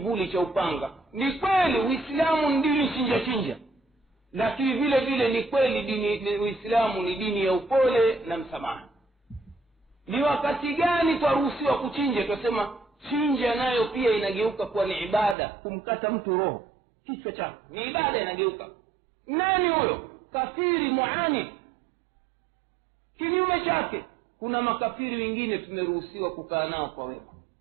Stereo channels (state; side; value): drops out; left; at 15.4 s